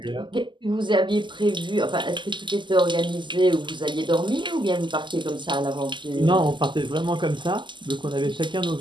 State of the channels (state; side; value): late; left; 0.23 ms